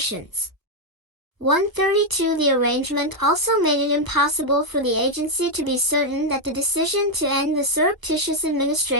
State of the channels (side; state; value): left; late; 1.1 ms